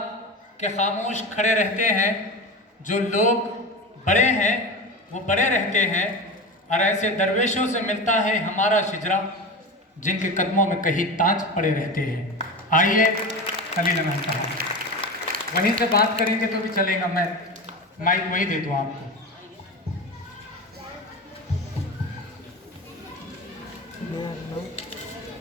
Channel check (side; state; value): both; normal; correlation 0.26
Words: کہ خاموش کھڑے رہتے ہیں، جو لوگ بڑے ہیں وہ بڑے رہتے ہیں، اور ایسے درویشوں سے ملتا ہے ہمارا شجرا جن کے قدموں میں کہیں تاج پڑے رہتے ہیں۔ آئیے خلیل احمد صاحب وہیں سے بات کریں گے تو بھی چلے گا، میں مائک وہی دے دوں آپ کو۔